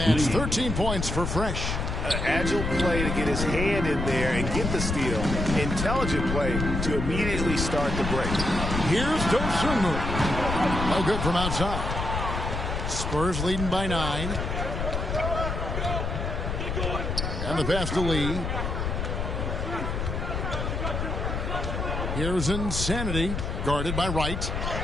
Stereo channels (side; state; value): left; noise; rumble, 2 dB below the sound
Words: 13 points for Fresh. Agile play to get his hand in there and get the steal. Intelligent play to immediately start the break. Here's Dosunmu. No good from outside. Spurs leading by 9. And the pass to Lee. Here's Insanity, guarded by Wright.